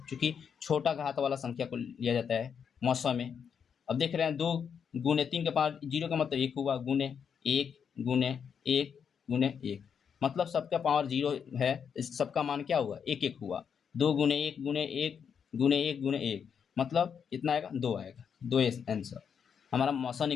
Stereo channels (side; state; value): right; quieter; 7.2 dB